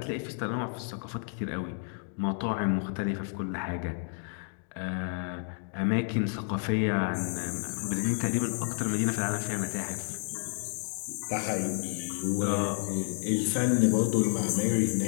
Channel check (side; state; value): right; silent; 57 dB below the other